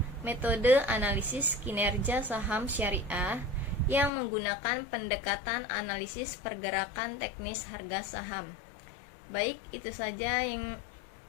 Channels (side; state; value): right; drops out; at 4.1 s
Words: metode analisis kinerja saham syariah yang menggunakan pendekatan analisis pergerakan teknis harga saham. Baik, itu saja yang